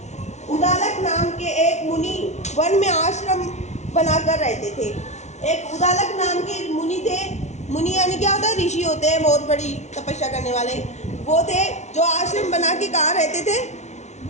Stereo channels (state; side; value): late; right; 0.33 ms